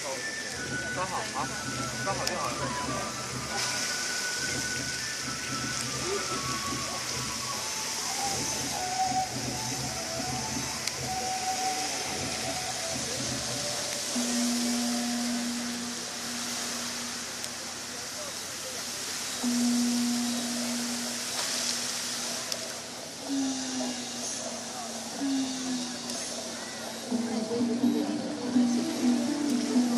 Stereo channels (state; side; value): identical; both; correlation 1.00